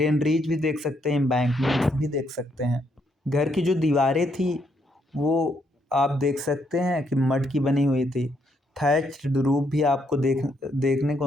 भी देख सकते हैं, एम्बैंकमेंट भी देख सकते हैं। घर की जो दीवारें थी वो आप देख सकते हैं कि मड की बनी हुई थी। थैच्ड रूफ भी आपको देखने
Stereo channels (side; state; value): both; normal; correlation 0.75